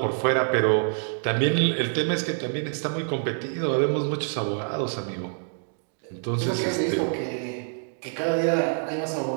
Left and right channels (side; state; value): left; silent; digital silence